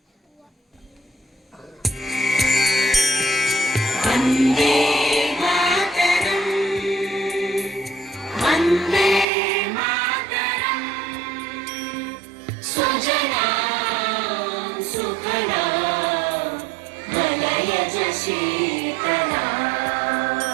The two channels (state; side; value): drops out; left; at 9.2 s